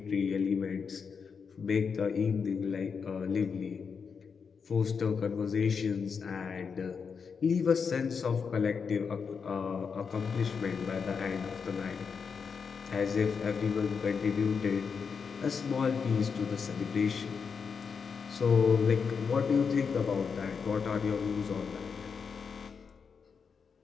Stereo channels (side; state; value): right; quieter; 5.9 dB